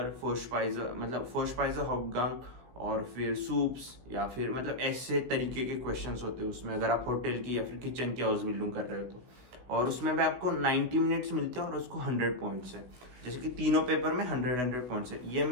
फोर्स्पाइजर मतलब फोर्स्पाइजर हाउपगांग, और फिर सूप्स, या फिर मतलब ऐसे तरीके के क्वेश्चंस होते हैं उसमें, अगर आप होटल की या फिर किचन की हाउस बिल्डिंग कर रहे हो तो। और उसमें भी आपको 90 मिनट्स मिलते हैं और उसको 100 पॉइंट्स है। जैसे कि तीनों पेपर में 100 पॉइंट्स है। ये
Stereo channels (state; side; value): late; left; 16 ms